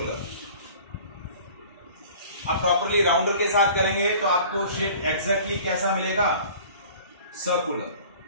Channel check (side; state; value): both; inverted; correlation -0.46